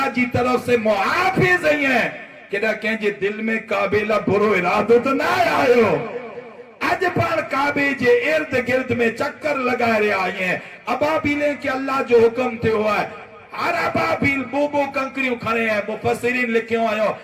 جی طرف سے محافظ ہیں کہ نہ کہیں جے دل میں کعبیلہ برو ارادو تو نہ آئے ہو اج پر کعبے جے ارد گرد میں چکر لگا رہے آئے ہیں ابابیلیں کہ اللہ جو حکم تھے ہوا ہے ہر ابابیل بو کنکڑیوں کھڑے ہیں مفسرین لکھیوں آئے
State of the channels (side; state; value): both; identical; correlation 1.00